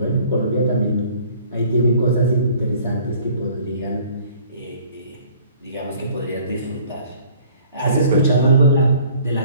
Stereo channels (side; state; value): both; inverted; correlation -0.54